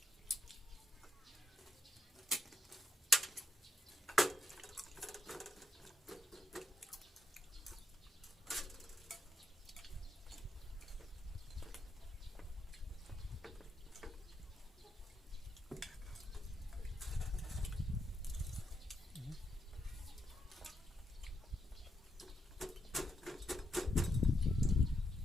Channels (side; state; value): both; normal; correlation 0.79